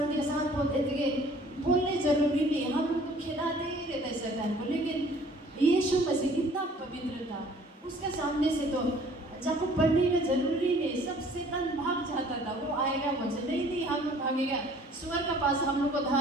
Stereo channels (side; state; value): both; normal; correlation 0.54